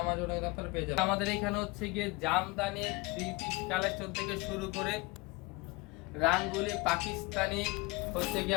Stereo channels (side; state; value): right; quieter; 24.1 dB